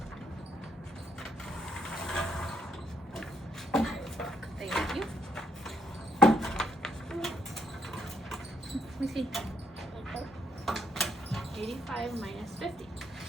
Thank you. Let me see. 85 minus 50.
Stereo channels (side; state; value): both; normal; correlation 0.71